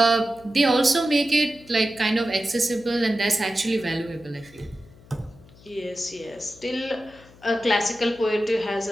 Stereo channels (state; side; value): noise; left; hum, 24 dB below the sound